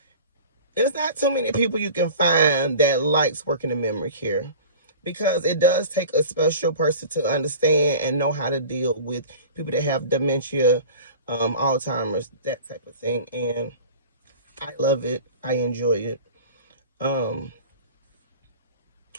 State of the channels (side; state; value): both; inverted; correlation -0.39